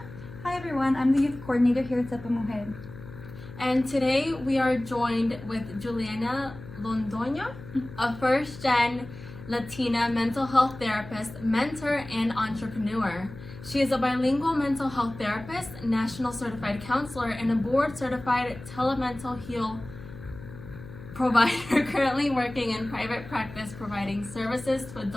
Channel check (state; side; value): noise; left; hum, 15 dB below the sound